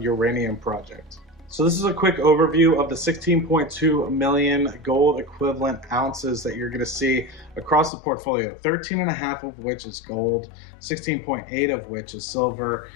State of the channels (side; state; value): right; drops out; at 7.9 s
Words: project. So this is a quick overview of the 16.2 million gold equivalent ounces that you're going to see across the portfolio, 13.5 of which is gold, 16.8 of which is silver,